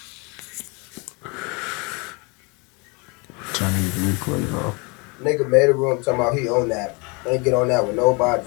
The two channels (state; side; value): quieter; right; 30.2 dB